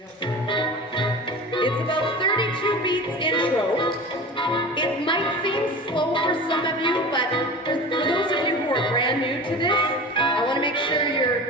about 32 beats intro. It might seem slow for some of you, but for those of you who are brand new to this, I want to make sure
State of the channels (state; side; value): normal; both; correlation 0.34